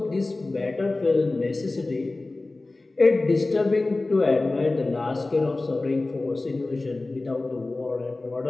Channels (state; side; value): quieter; right; 3.1 dB